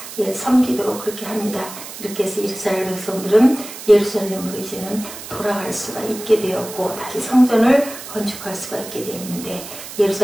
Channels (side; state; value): right; noise; hiss, 12 dB below the sound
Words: 섬기도록 그렇게 합니다. 이렇게 해서 이스라엘 백성들은 예루살렘으로 이제는 돌아갈 수가 있게 되었고 다시 성전을 건축할 수가 있게 되었는데